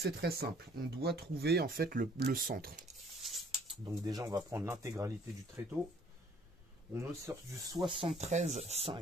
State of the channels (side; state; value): both; normal; correlation 0.59